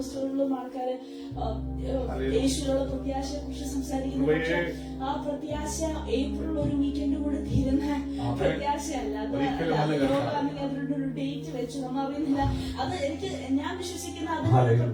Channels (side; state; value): both; identical; correlation 1.00